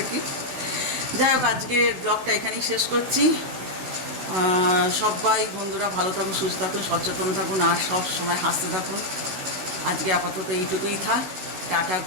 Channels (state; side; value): late; left; 15 ms